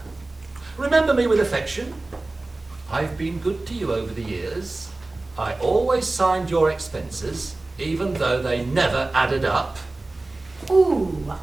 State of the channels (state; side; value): quieter; left; 3.0 dB